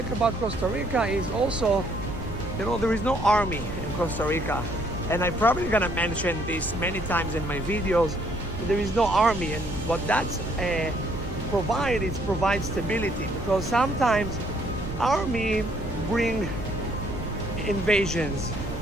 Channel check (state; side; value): normal; both; correlation 0.66